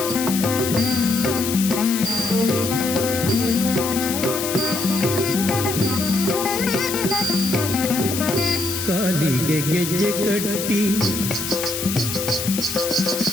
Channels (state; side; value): noise; left; hiss, 5 dB below the sound